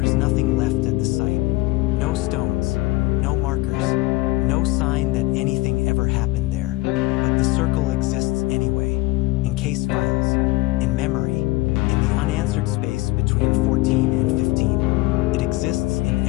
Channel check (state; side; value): quieter; right; 20.7 dB